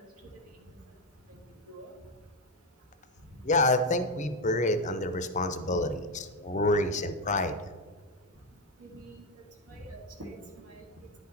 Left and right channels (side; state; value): both; normal; correlation 0.09